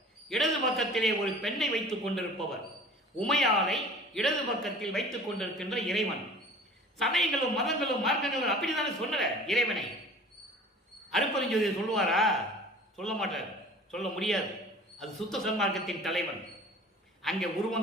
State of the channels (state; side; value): normal; both; correlation 0.45